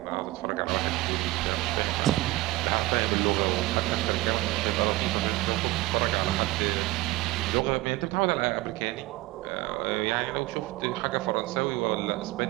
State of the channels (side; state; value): left; quieter; 19.1 dB